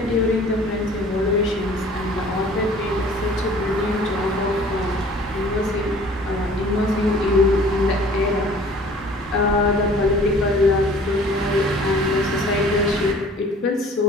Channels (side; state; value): both; normal; correlation 0.50